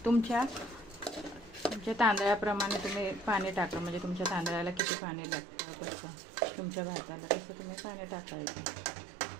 तुमच्या तांदळाप्रमाणे तुम्ही पाणी टाका. म्हणजे तुमच्या तांदळाला किती पाणी लागतं, कसं तुमच्या भाताला तसं तुम्ही पाणी टाकायचं.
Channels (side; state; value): left; drops out; at 4.8 s